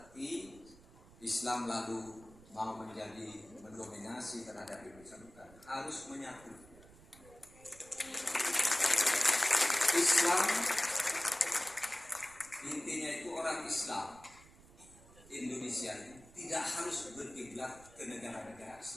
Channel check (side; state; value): right; noise; rumble, 23 dB below the sound